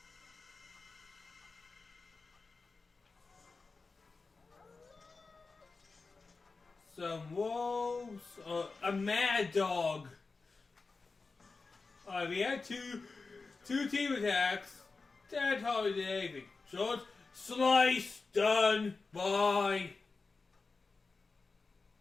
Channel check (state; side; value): quieter; right; 4.1 dB